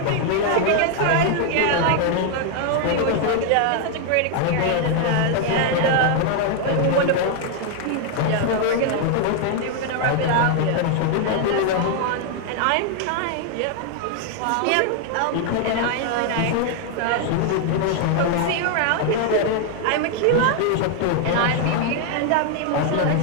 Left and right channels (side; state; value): both; different; correlation 0.00